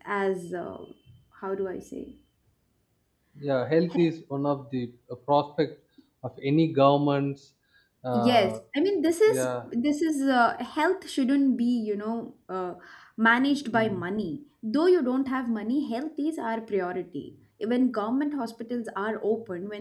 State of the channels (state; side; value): identical; both; correlation 1.00